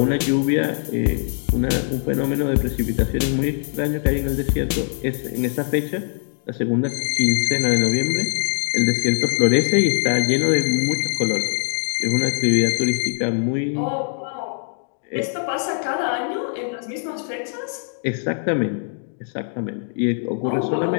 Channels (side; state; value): right; silent; digital silence